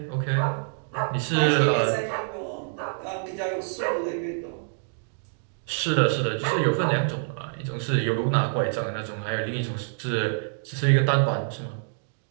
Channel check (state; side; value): silent; left; digital silence